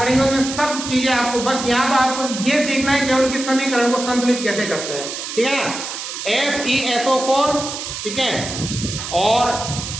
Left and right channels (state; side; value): noise; right; hiss, 7 dB below the sound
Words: उनमें सब चीजें आपको, बस यहाँ तो आपको ये सीखना है केवल कि समीकरण को संतुलित कैसे करते हैं। ठीक है ना, FeSO4। ठीक है, और